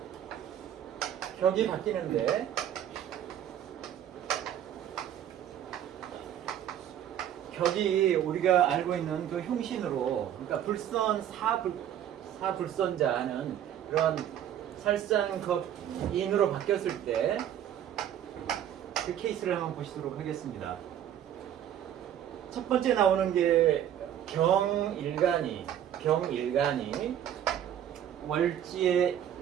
격이 바뀌는데 격이 우리가 알고 있는 그 흉신으로, 그러니까 불선 사불선자는 그런 살상격인으로 바뀌었을 때 그 케이스를 한번 보시도록 하겠습니다. 첫 번째 나오는 게 경일간이 월지에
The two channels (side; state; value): left; quieter; 10.4 dB